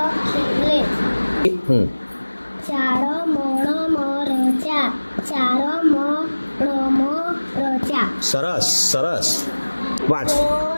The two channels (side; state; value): both; inverted; correlation -1.00